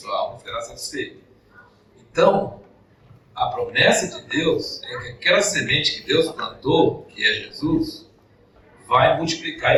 alma e será satisfeito. Então, a promessa de Deus é que aquela semente que Deus plantou, que é Jesus, vai multiplicar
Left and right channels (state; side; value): identical; both; correlation 1.00